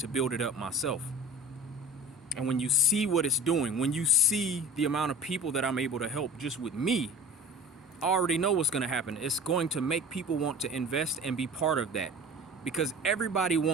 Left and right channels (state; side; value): normal; both; correlation 0.38